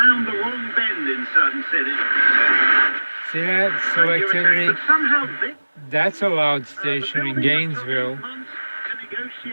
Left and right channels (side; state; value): both; inverted; correlation -1.00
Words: the wrong bend in certain cities. See that selectivity? But somehow this That's a loud station in Gainesville.